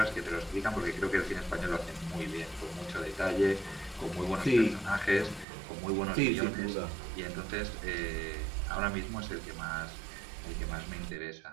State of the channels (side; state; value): left; drops out; at 5.5 s